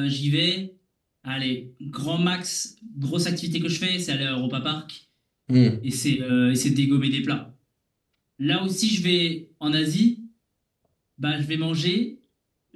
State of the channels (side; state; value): both; identical; correlation 1.00